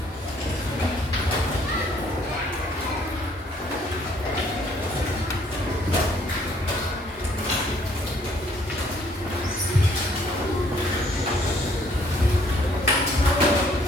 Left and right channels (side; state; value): both; normal; correlation 0.63